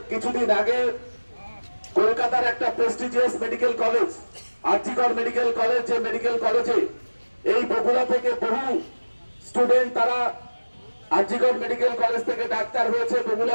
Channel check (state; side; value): inverted; both; correlation -1.00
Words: কিছুদিন আগে কলকাতার একটা prestigious medical college RG Kar medical college, যে মেডিকেল কলেজে এই বগুড়া থেকে বহু স্টুডেন্ট তারা আরজিকর মেডিকেল কলেজ থেকে ডাক্তার হয়েছে,